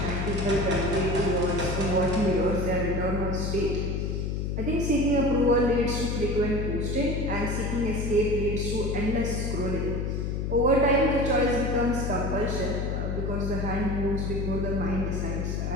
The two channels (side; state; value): left; noise; hum, 1 dB below the sound